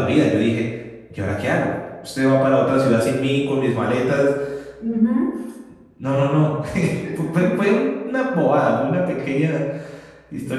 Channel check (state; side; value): identical; both; correlation 1.00